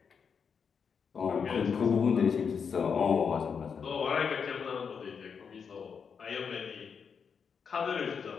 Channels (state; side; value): quieter; right; 6.4 dB